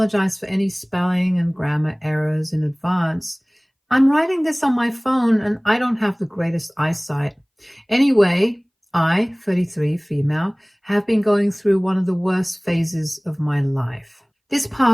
for any spelling and grammar errors in advance. I'm writing this on my phone and I don't have the greatest eyesight. Anyway, I, 33, female, have been going through one of the worst phases of my life. This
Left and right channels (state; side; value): identical; both; correlation 1.00